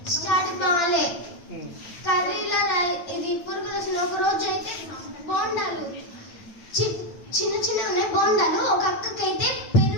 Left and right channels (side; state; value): right; late; 8.7 ms